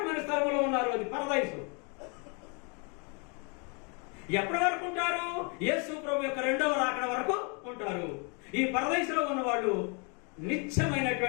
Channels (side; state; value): right; quieter; 34.8 dB